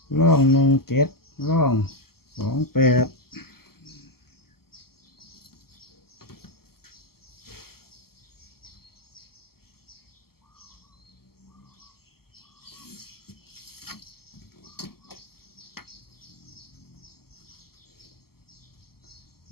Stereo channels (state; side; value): late; right; 0.95 ms